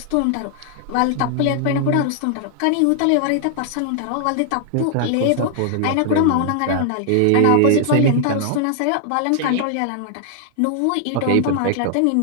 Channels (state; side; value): different; both; correlation 0.00